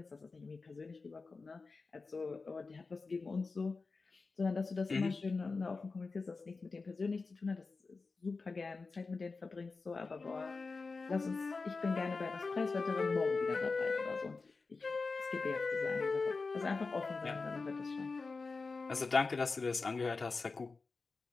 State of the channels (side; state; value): right; quieter; 4.1 dB